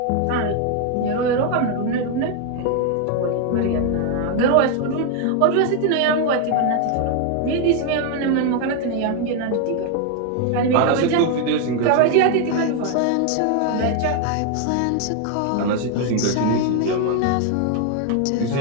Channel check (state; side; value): different; both; correlation 0.01